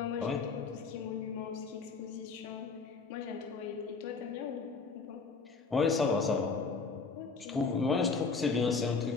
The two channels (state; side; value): quieter; right; 4.7 dB